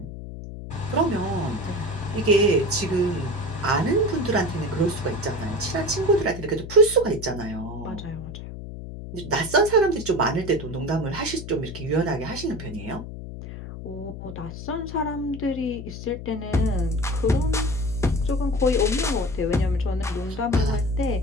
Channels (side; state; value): left; noise; hum, 10 dB below the sound